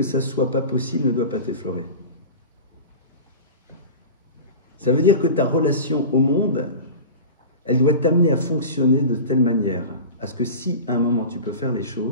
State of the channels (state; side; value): inverted; both; correlation -0.32